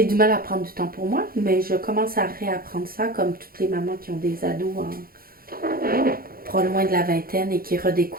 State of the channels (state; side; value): late; left; 0.43 ms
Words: du mal à prendre du temps pour moi, mais je commence à réapprendre ça comme toutes les mamans qui ont des ados pas loin de la vingtaine et qui